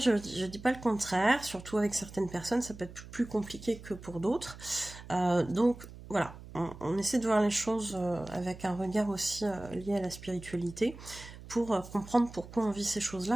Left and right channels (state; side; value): noise; right; hum, 16 dB below the sound